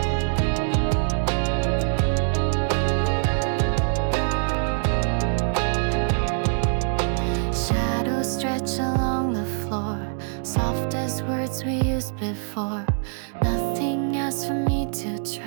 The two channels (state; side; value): silent; left; digital silence